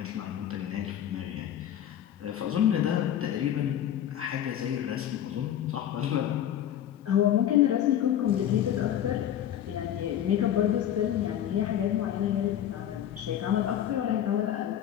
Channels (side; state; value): right; quieter; 10.7 dB